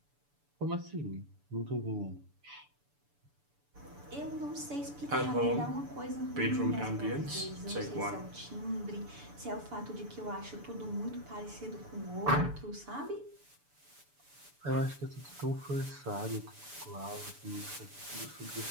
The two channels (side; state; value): left; late; 6.9 ms